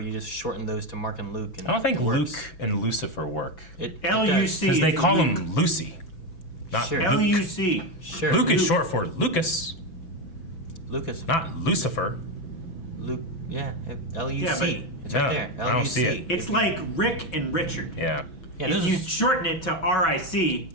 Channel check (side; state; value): right; late; 6.0 ms